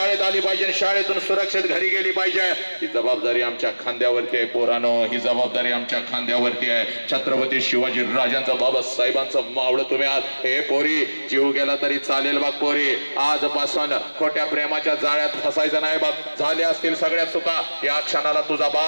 आली पाहिजे, शाळेतून सुरक्षित घरी गेली पाहिजे. ही जबाबदारी आमच्या खांद्यावरती आहे पोरानो. ही जबाबदारी आमच्या खांद्यावरती आहे. छत्रपती शिवाजी राजांचं बाबासाहेबांचं मावळं तुम्ही आज. हे पोरी जीव गेला तरी चालेल बघ पोरी. आजपासून खोट्या प्रेमाच्या जाळ्यात फसायचं नाही बघ. झाले असतील सगळ्या चुका, या क्षणाला तुझा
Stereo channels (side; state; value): both; inverted; correlation -1.00